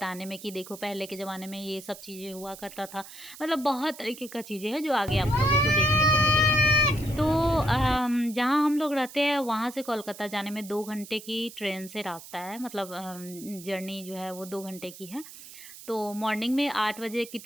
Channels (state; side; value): noise; right; hiss, 16 dB below the sound